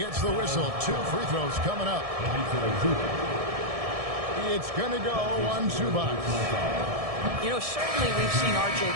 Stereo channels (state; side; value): late; left; 1.7 ms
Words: the whistle. 2 free throws coming up. It's going to go on Zubac. You know, certainly we've seen R.J.